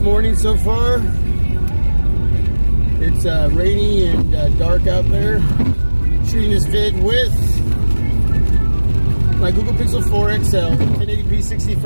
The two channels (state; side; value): inverted; both; correlation -1.00